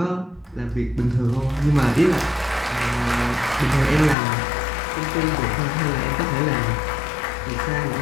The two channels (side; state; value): right; drops out; at 4.2 s